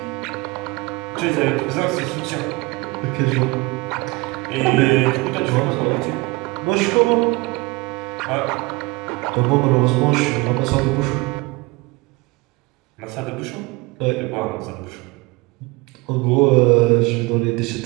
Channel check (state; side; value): quieter; left; 24.0 dB